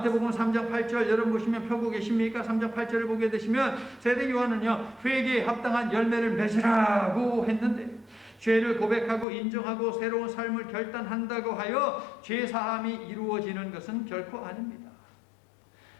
3장 8절 여러분 보시면 펴고 계십니까? 3장 8절을 보게 되시면 세례 요한은요, 회개에 합당한 열매를 맺으라고 했는데, 죄를 고백하고 인정하고 새로운 삶을 결단한다고 하여 죄사함이 이루어지는 것은 결코 아닙니다.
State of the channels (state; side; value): drops out; right; at 9.2 s